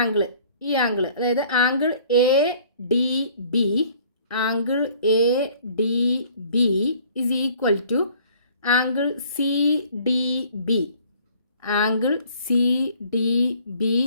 ആംഗിൾ, ഈ ആംഗിൾ, അതായത് angle A D B is equal to angle C D B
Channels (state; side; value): inverted; both; correlation -0.55